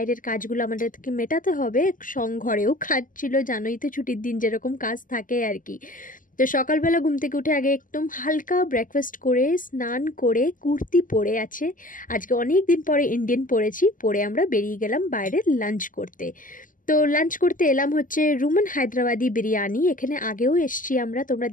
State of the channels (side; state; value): right; late; 0.39 ms